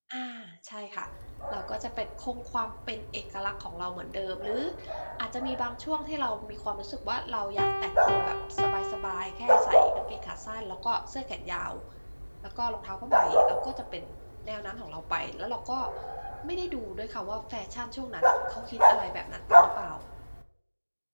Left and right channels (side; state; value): both; inverted; correlation -1.00